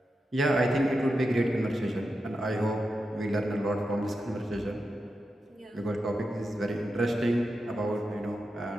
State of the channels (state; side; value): normal; both; correlation 0.89